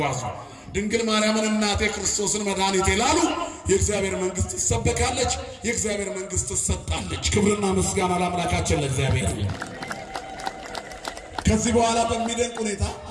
ድንግል ማርያምን እናቴ ክርስቶስን መድኃኒቴ ላሉ የእግዚአብሔር መንግስት ትሰበካለች። የእግዚአብሔር መንግስት ትሰጣለች። ክብርና ምስጋና ለአምላካችን ለእግዚአብሔር። ከዚህ በኋላ በሚደንቅ ሁኔታ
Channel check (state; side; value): identical; both; correlation 1.00